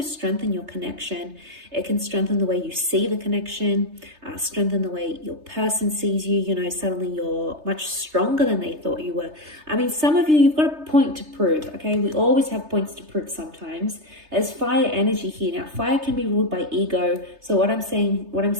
strengthen your connection. It can strengthen the way you see the connection, strengthen the way your person sees you. You know, suddenly you're much stronger than they thought you were. I mean, some of you, you've got a point to prove, okay? We always have points to prove sometimes. There's fire energy here. Now, fire can be ruled by ego. So what I'm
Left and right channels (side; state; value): left; late; 3.3 ms